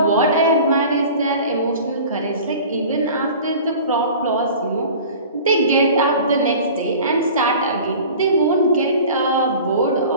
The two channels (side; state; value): both; inverted; correlation -0.41